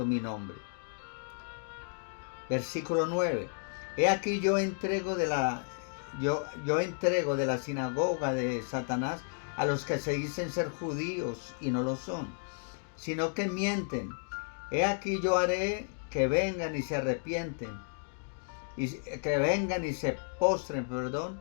mi nombre. Versículo 9. He aquí yo entrego de la sinagoga de Satanás a los que se dicen ser judíos y no lo son, sino que mienten. He aquí yo haré que vengan y se arrepienten, y que vengan y se postren,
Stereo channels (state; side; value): silent; right; 56 dB below the other